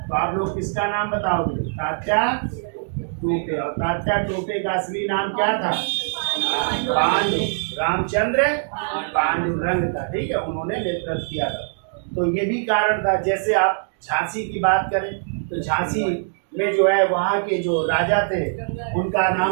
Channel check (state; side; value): silent; left; digital silence